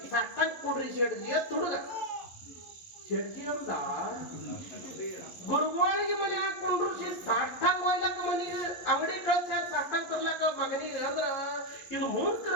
ಸಾಷ್ಟಾಗ ಕೊಡ್ರಿ ಶೆಡ್ಜಿ ಅಂತ ಹುಡುಗ. ಶೆಡ್ಜಿ ಅಂದ ಗುರುಗಳಿಗೆ ಮನೆ ಹಾಕೊಂಡ್ರು ಸಾಷ್ಟಾಗ ಹೋಯ್ಲಕ್ಕ ಮನಿಗೆ ಅಂಗಡಿ ಕಳ್ಸ್ಯಾರ ಸಾಷ್ಟಾಗ ತರ್ಲಕ್ಕ ಮಗನಿಗೆ. ಅಂದ್ರ ಇದು ಮೂರ್ಖರ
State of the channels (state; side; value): late; right; 11 ms